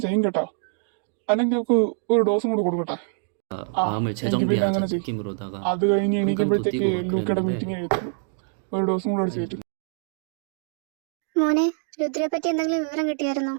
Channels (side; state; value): left; silent; digital silence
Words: ചെയ്യും കേട്ടോ. അല്ലെങ്കിൽ നമുക്ക് ഒരു ഡോസും കൂടെ കൊടുക്കട്ടെ. 마음을 재정비하자 느낌으로다가 അത് കഴിഞ്ഞ് 한강도 എണീക്കുമ്പോഴത്തേക്ക് 뛰고 막 ലൂക്കയുടെ 그랬는데 മീറ്റിംഗ് എഴുതും. ഒരു ഡോസും കൂടെ അടിച്ചിട്ട്. മോനെ, രുദ്രയെ പറ്റി എന്തെങ്കിലും വിവരം കിട്ടിയായിരുന്നോ?